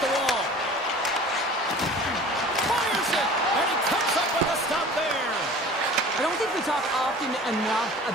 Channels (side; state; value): both; normal; correlation 0.43